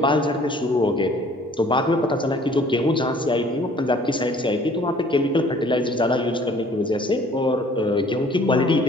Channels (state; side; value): normal; both; correlation 0.55